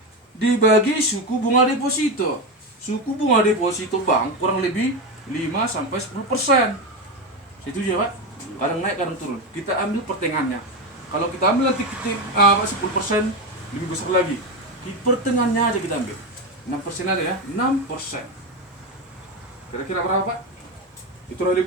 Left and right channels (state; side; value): normal; both; correlation 0.15